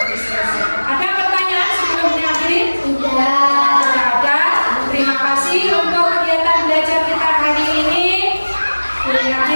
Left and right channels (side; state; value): both; inverted; correlation -1.00